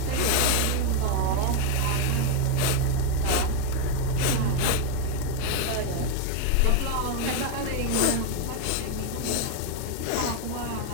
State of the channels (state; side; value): different; both; correlation 0.01